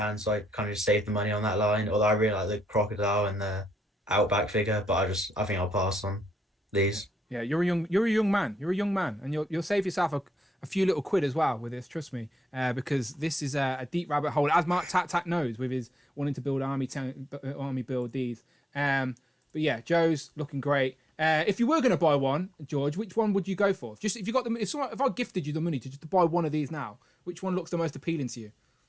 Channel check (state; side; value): normal; both; correlation 0.83